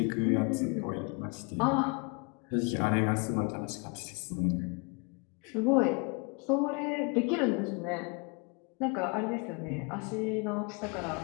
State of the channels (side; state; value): right; quieter; 32.0 dB